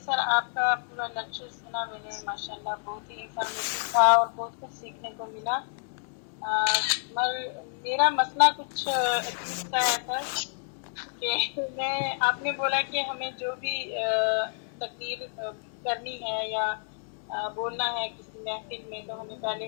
آپ کا پورا لیکچر سنا میں نے ماشاءاللہ بہت ہی انفارمیٹیو تھا اور بہت کچھ سیکھنے کو ملا. میرا مسئلہ کچھ عجیب سا ہے سر کہ آپ نے بولا کہ ہمیں جو بھی تقریر کرنی ہے یا بولنا ہے کسی محفل میں تو ہمیں پہلے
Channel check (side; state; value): right; silent; digital silence